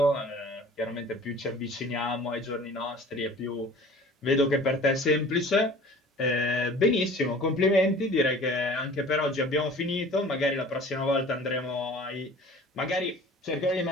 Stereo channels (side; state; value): both; normal; correlation 0.45